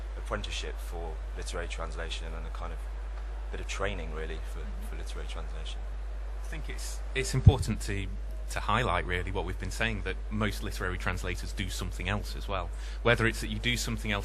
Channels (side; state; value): both; identical; correlation 1.00